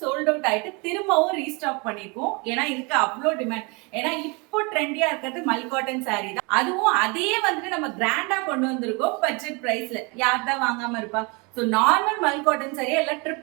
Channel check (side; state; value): left; quieter; 29.9 dB